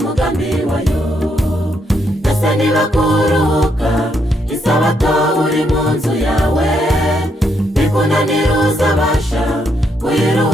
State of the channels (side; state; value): both; normal; correlation 0.76